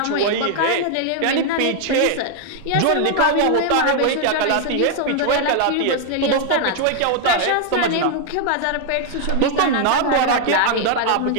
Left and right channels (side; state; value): both; different; correlation 0.00